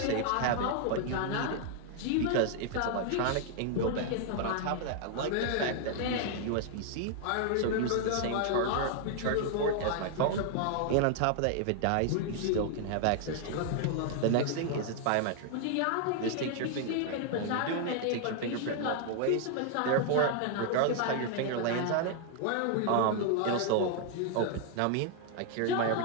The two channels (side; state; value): both; different; correlation 0.00